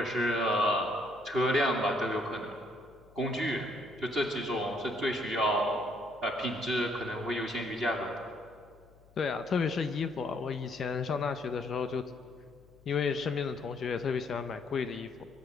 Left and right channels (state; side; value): noise; left; hum, 27 dB below the sound